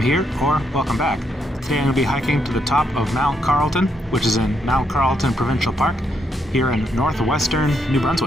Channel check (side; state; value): both; normal; correlation 0.77